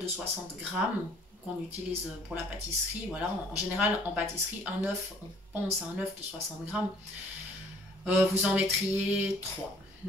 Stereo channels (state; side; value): normal; both; correlation 0.57